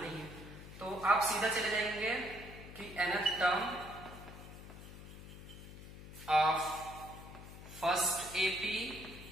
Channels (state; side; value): noise; left; hum, 14 dB below the sound